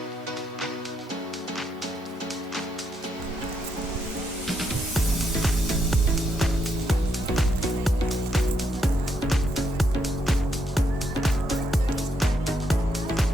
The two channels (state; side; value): normal; both; correlation 0.77